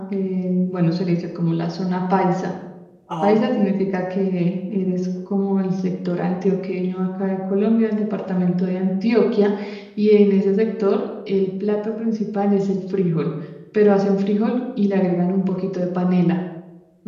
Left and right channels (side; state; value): both; identical; correlation 1.00